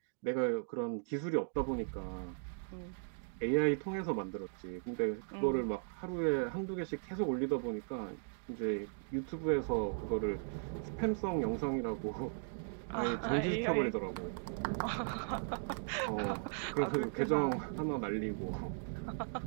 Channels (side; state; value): left; silent; digital silence